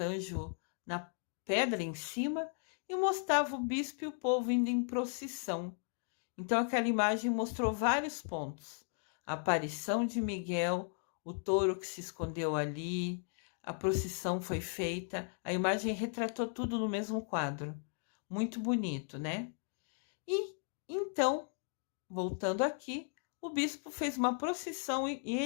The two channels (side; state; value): right; silent; 54 dB below the other